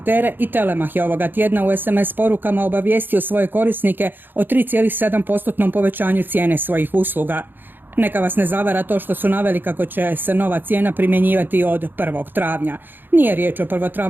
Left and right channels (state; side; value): late; left; 0.094 ms